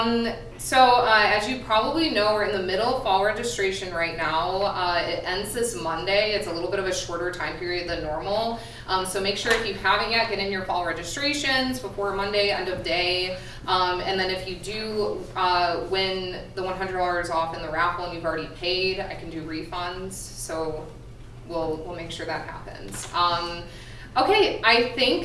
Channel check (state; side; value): identical; both; correlation 1.00